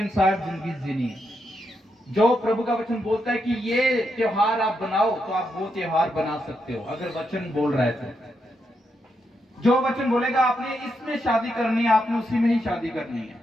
जिंदगी जीनी है। जो प्रभु का वचन बोलता है कि ये त्योहार आप बनाओ, तो आप वो त्योहार बना सकते हो अगर वचन बोल रहा है तो। जो वचन बोलेगा आपने इसमें शादी करनी है, आपने उसी में ही शादी करनी है।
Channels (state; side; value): normal; both; correlation 0.82